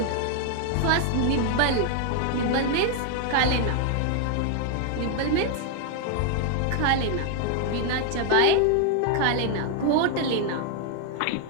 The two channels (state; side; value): different; both; correlation 0.00